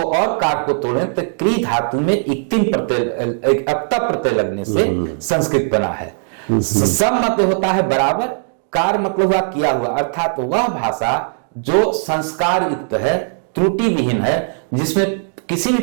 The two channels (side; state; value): left; silent; digital silence